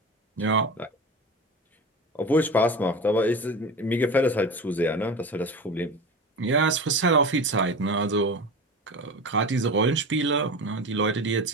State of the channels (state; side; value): normal; both; correlation 0.29